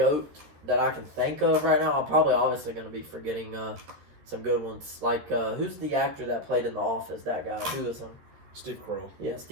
that I can think of right now. I'm probably obviously going to be forgetting some good ones. Like, who's the actor that played in The Office? That guy. Who is him? Steve Carell. Yeah,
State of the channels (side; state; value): left; late; 13 ms